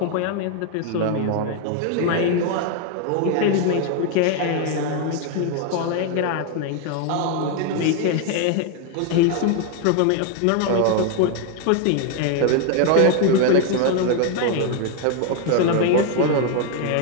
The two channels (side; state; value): both; different; correlation 0.01